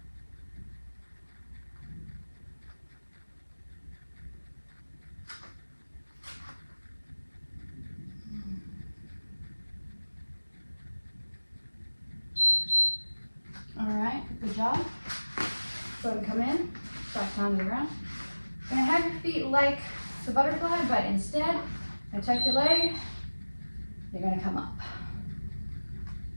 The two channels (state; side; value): inverted; both; correlation -1.00